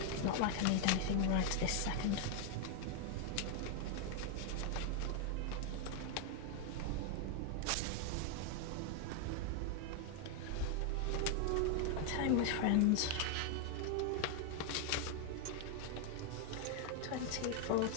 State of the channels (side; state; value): both; different; correlation 0.00